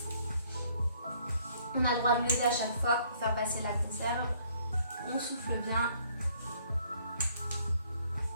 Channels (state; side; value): inverted; both; correlation -0.63